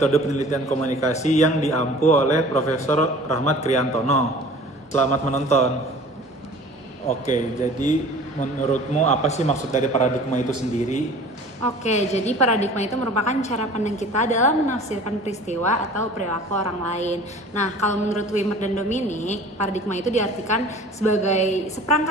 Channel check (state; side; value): normal; both; correlation 0.45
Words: penelitian komunikasi yang diampu oleh Profesor Rahmat Kriantono. Selamat menonton. Oke, jadi menurutmu apa sih maksud dari paradigma itu sendiri? Oke, jadi paradigma itu merupakan cara pandang kita dalam menafsirkan peristiwa atau perilaku orang lain. Nah, kalau menurut Wimmer dan Dominic, paradigma itu diartikan sebagai